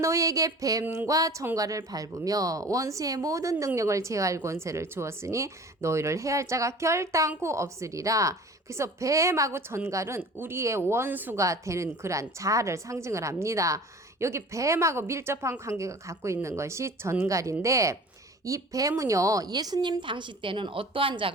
뱀과 전갈을 밟으며 원수의 모든 능력을 제어할 권세를 주었으니 너희를 해할 자가 결단코 없으리라. 그래서 뱀하고 전갈은 우리의 원수가 되는 그러한 자아를 상징을 합니다. 여기 뱀하고 밀접한 관계가 갖고 있는 것이 전갈인데 이 뱀은요 예수님 당시 때는 어떠한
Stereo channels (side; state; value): both; normal; correlation 0.42